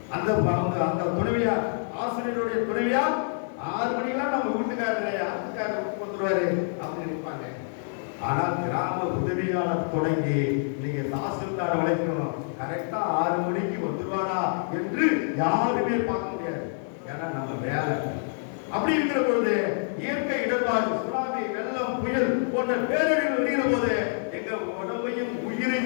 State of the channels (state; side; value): silent; right; digital silence